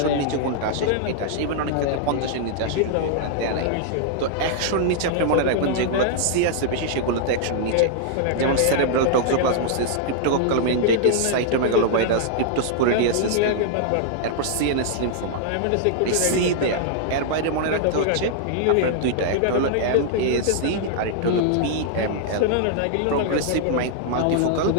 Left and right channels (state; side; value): different; both; correlation -0.01